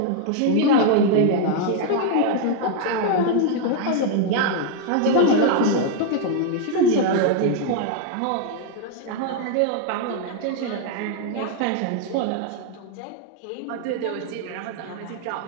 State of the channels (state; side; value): different; both; correlation 0.00